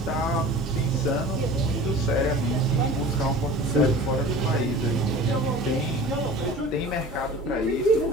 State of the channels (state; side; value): normal; both; correlation 0.40